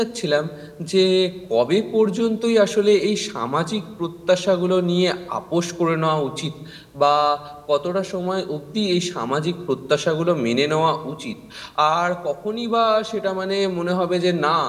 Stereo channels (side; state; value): both; identical; correlation 1.00